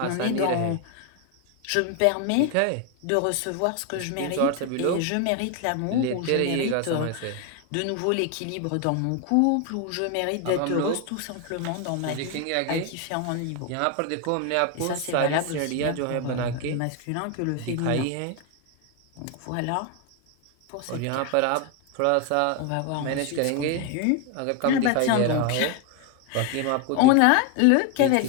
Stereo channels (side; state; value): both; different; correlation 0.01